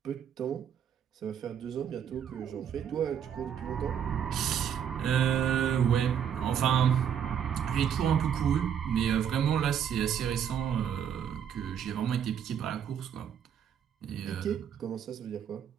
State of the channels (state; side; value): quieter; left; 8.5 dB